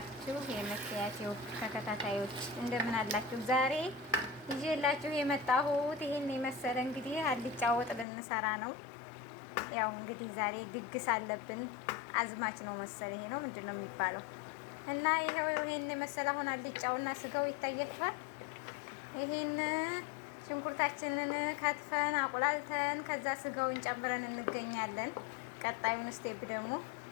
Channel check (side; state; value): right; drops out; at 8.1 s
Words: የመክያቴው ተከታታዮች እንደምን አላችሁ? ዛሬ ይዤላችሁ የመጣሁት ይሄን የመሰለ እንግዲህ አልጫ ወጥ ልንሰራ ነው። ያው እንግዲህ ዛሬ ድግስ አለብን። አዝማች ነው መሰል ይሄ ነው ምንድን ነው የሚባለው? እና ይሄን የመሰለ አሁን አልጫውና ስጋው ይታያችኋል። ይሄን ሽንኩርታችንን ከትፈን አቁላልተን ከዛ ስጋውን ጨምረን እንገኛለን። ቀጣዩን ስቴፕ ደግሞ